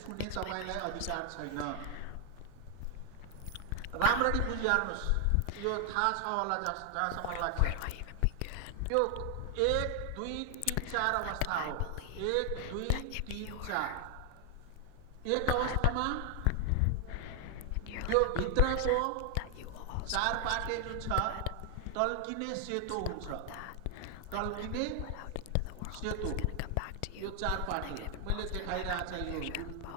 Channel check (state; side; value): different; both; correlation 0.00